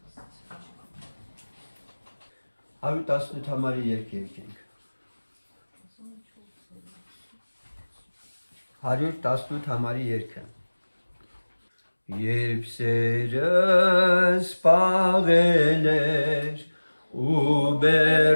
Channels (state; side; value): inverted; both; correlation -1.00